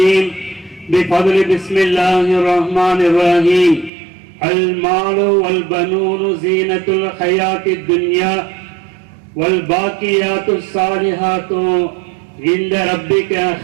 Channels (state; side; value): drops out; left; at 3.9 s